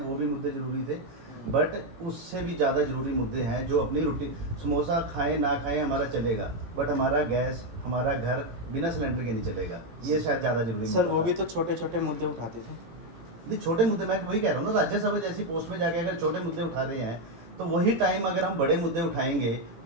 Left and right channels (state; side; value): late; left; 18 ms